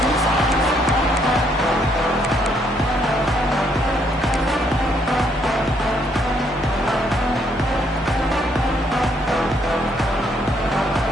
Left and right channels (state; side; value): normal; both; correlation 0.71